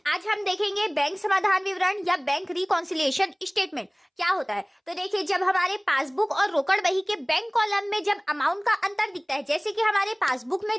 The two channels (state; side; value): identical; both; correlation 1.00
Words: आज हम देखेंगे बैंक समाधान विवरण या बैंक रिकॉन्सिलिएशन स्टेटमेंट क्या होता है। तो देखिए, जब हमारे पासबुक और रोकड़ बही के बैंक कॉलम में जब अमाउंट का अंतर दिखता है, जैसे कि हमारे पासबुक में